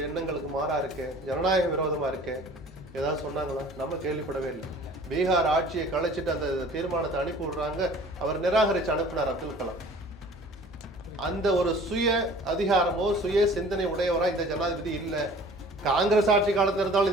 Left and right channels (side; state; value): both; normal; correlation 0.48